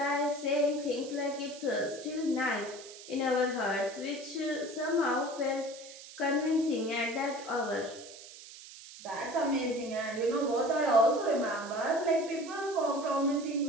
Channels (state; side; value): noise; right; hiss, 16 dB below the sound